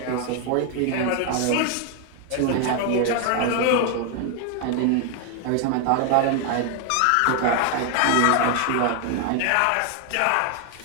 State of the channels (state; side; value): different; both; correlation 0.01